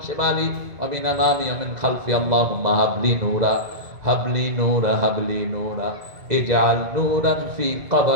শিমালি ওয়া মিন আমামি ওয়া মিন খালফি। আল্লাহুম্মা হাবলি নূরা হাবলি নূরা হাবলি নূরা ইজআল নূরান ফি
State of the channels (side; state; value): left; late; 2.0 ms